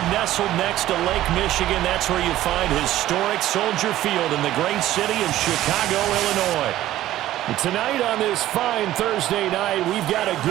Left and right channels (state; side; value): quieter; left; 14.1 dB